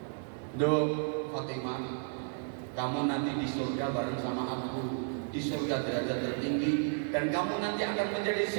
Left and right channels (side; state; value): left; silent; digital silence